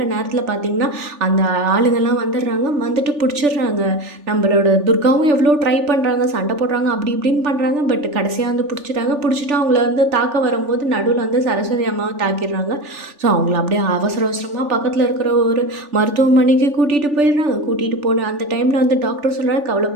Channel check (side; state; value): left; late; 3.4 ms